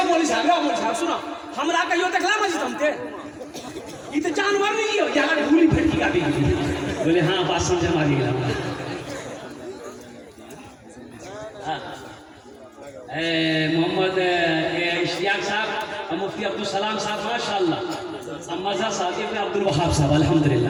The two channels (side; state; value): both; identical; correlation 1.00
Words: मौलवी साहब सुनो हमरा कहियो देखला मस्जिद हम थे ये तो जानवर नहीं हो यहाँ भूली फटकी का भी बोले हाँ बात समझ मारी गया। मोहम्मद इश्तियाक साहब, मुफ्ती अब्दुल सलाम साहब माशाअल्लाह, मज़ा साहब, इब्न अब्दुल वहाब साहब